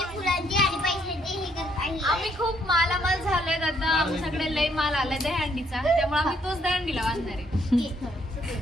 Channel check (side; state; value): both; normal; correlation 0.70